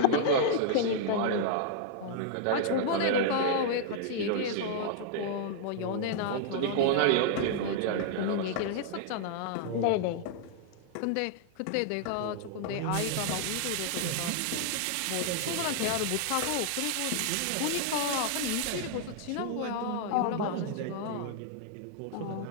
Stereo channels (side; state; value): both; different; correlation -0.01